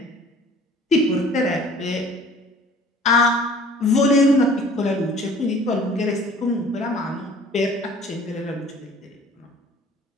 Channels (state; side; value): normal; both; correlation 0.50